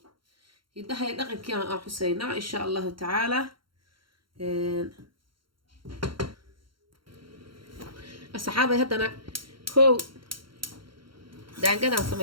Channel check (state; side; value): late; left; 0.73 ms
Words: hidahay dhaqankii aan xusaynaa insha Allah ta'ala asxaabay haddana kow daangadaan